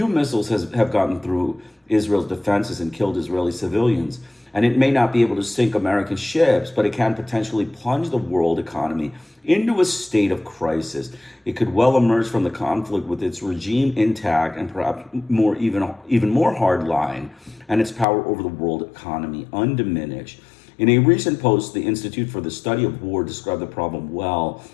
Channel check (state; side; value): drops out; right; at 18.1 s